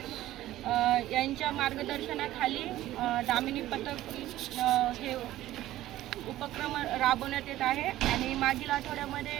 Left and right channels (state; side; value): quieter; left; 14.8 dB